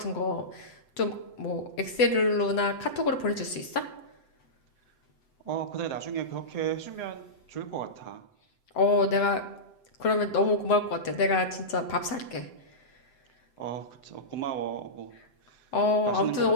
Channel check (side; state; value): right; late; 7.9 ms